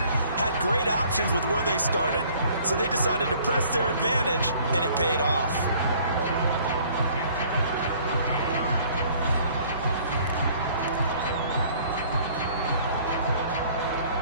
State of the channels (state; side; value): inverted; both; correlation -0.56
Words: Had great options with where they started, so they decided to press their advantage, and it paid off.